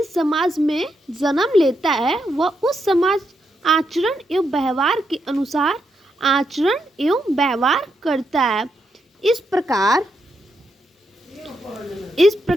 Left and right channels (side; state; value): both; normal; correlation 0.82